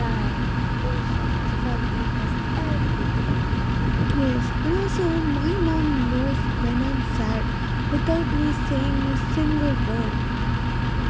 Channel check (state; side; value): identical; both; correlation 1.00